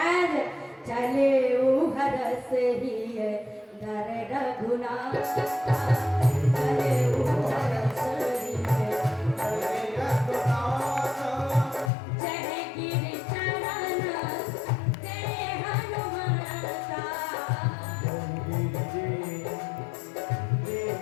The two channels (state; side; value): drops out; right; at 11.9 s